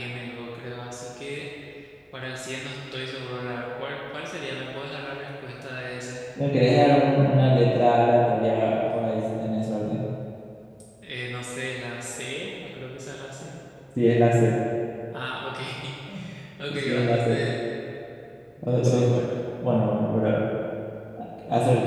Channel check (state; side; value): identical; both; correlation 1.00